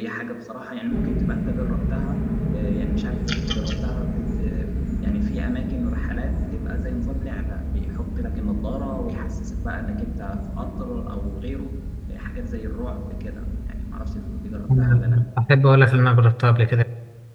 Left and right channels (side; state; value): both; identical; correlation 1.00